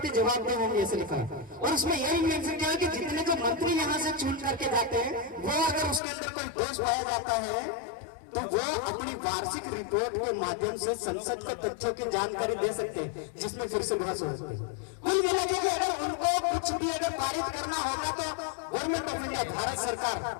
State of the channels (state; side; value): drops out; right; at 6.0 s